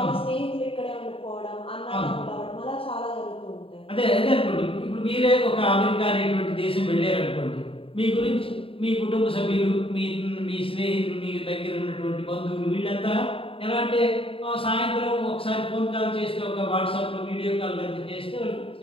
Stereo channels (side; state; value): right; late; 0.27 ms